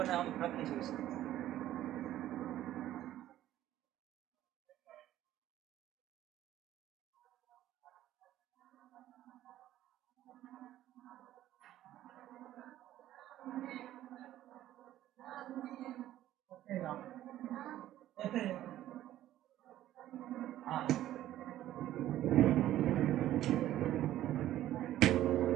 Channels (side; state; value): left; quieter; 13.3 dB